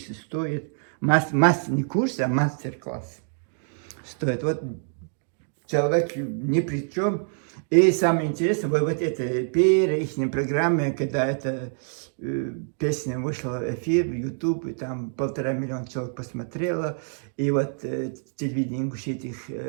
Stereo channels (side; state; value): left; silent; digital silence